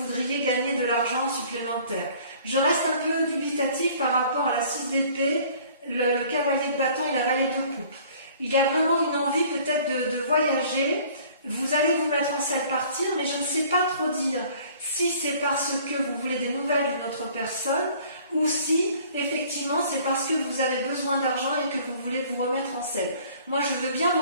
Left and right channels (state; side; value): inverted; both; correlation -0.53